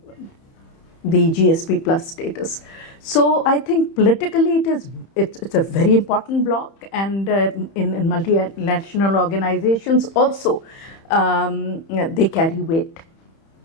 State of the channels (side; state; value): right; late; 31 ms